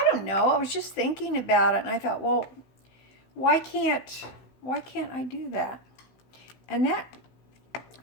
don't know. I was just thinking about it, and I thought, well, why can't I do that? And that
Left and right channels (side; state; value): right; late; 16 ms